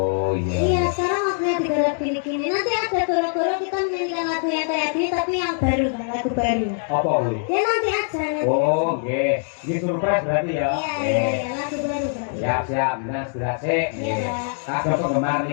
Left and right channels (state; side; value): silent; right; 64 dB below the other